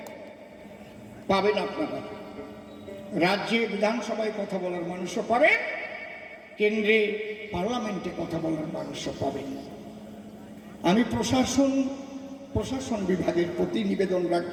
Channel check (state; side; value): identical; both; correlation 1.00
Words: পাবেন আপনারা। রাজ্যে বিধানসভায় কথা বলার মানুষও পাবেন, কেন্দ্রে পার্লামেন্টে কথা বলার মানুষও পাবেন। আমি প্রশাসন বিভাগের প্রতি নিবেদন